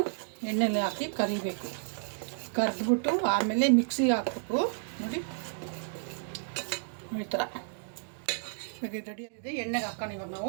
ಎಣ್ಣೆಲಿ ಹಾಕಿ ಕರಿಬೇಕು. ಕರೆದ್ಬಿಟ್ಟು ಆಮೇಲೆ ಮಿಕ್ಸಿಗೆ ಹಾಕ್ಬೇಕು. ನೋಡಿ ಈ ಥರ ಇವಾಗ ಇದು ರೆಡಿ ಆಗಿದೆ. ಎಣ್ಣೆಗೆ ಹಾಕೋಣ ಇವಾಗ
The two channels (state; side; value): silent; left; digital silence